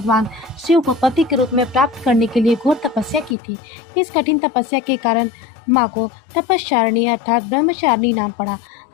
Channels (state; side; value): drops out; right; at 3.4 s